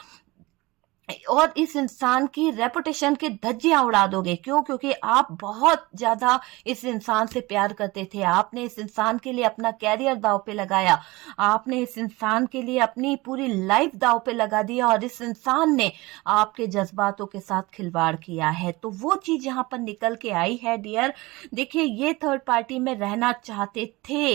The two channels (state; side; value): quieter; left; 21.9 dB